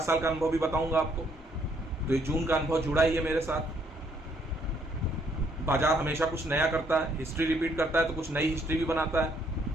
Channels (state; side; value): normal; both; correlation 0.68